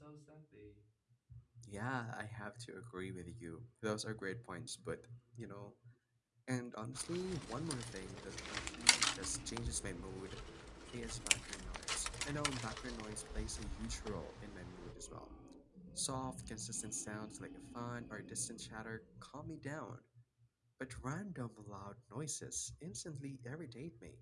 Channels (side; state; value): both; identical; correlation 1.00